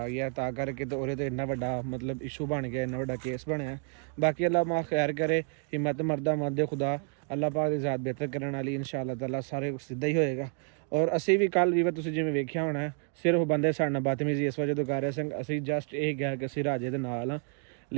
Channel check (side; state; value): left; quieter; 39.8 dB